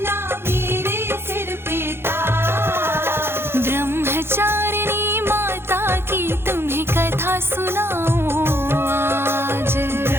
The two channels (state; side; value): late; left; 0.11 ms